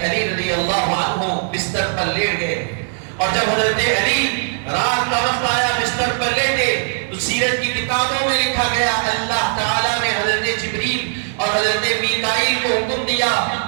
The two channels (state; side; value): silent; left; digital silence